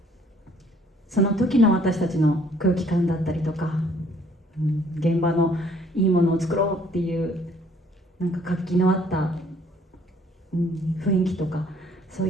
時の私たちの空気感だったりとか、現場のいいものを作ろうっていうなんか活気のあった、雰囲気とか、そう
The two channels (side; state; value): both; normal; correlation 0.61